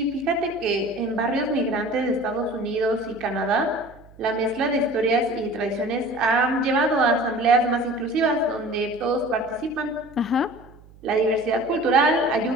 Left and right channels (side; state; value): right; noise; hum, 24 dB below the sound